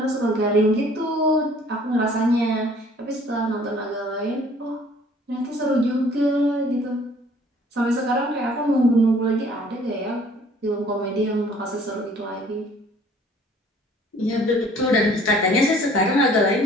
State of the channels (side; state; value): both; normal; correlation 0.55